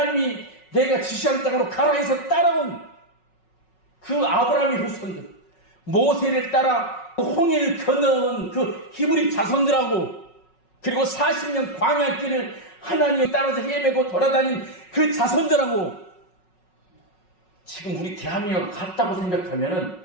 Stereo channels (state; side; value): late; right; 5.4 ms